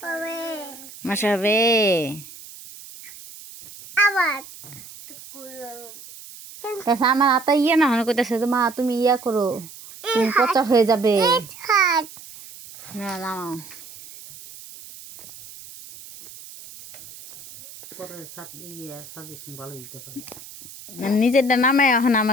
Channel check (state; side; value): noise; right; hiss, 17 dB below the sound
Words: মশা হবে আমার হাতা ইয়ে না হয় কইতেছে তো মা তুমি ইয়া করো, তুমি পচা হয়ে যাবে। না নামাও, নিজেরটা নামায় এখন